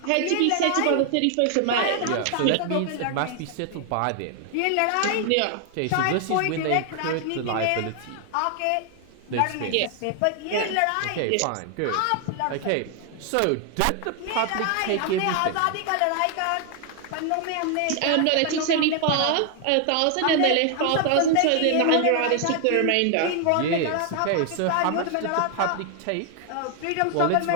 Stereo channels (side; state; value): both; different; correlation 0.00